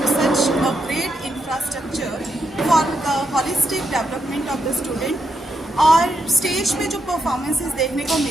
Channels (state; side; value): normal; both; correlation 0.81